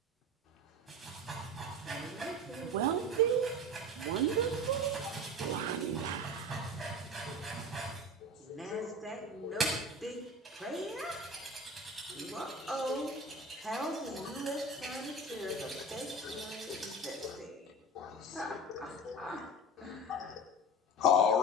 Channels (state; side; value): normal; both; correlation 0.32